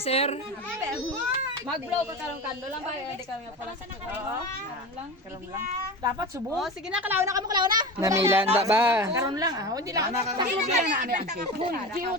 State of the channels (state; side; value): normal; both; correlation 0.28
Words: Mag-blow ka karong kando lang ba? Hindi kami pala sa karon lang. Dapat subo. Oh, sige na, kalaw na kamo, kalaw na. Namilanda ba? Karon lang ah. Hindi lang. Taklo bilang na ani ang cake. Hindi o